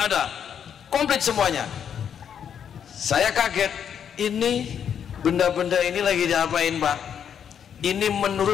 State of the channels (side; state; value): right; quieter; 8.3 dB